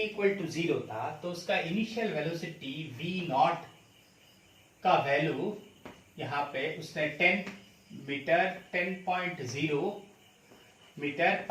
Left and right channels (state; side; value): identical; both; correlation 1.00